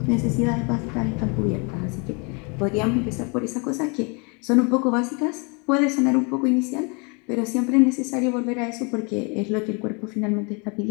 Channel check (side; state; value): right; quieter; 33.0 dB